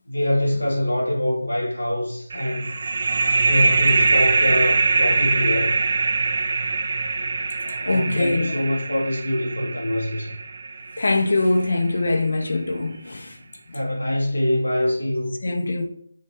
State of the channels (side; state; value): both; inverted; correlation -0.92